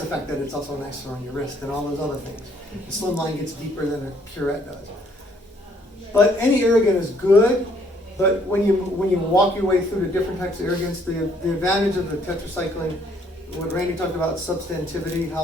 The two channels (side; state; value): both; normal; correlation 0.65